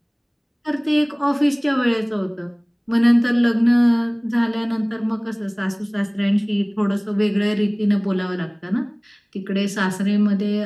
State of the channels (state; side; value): identical; both; correlation 1.00